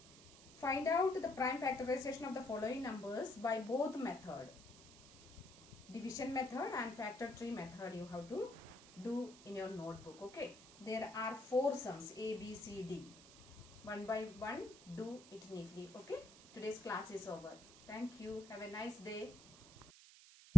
Find out the prime factorization of the following numbers by both method. Division method and factor tree method you have to do in your notebook. Okay. There are 4 sums A, B, C, D. One by one, do it neatly. Okay. Today's class is over. Thank you. Have a nice day.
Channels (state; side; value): noise; right; hiss, 17 dB below the sound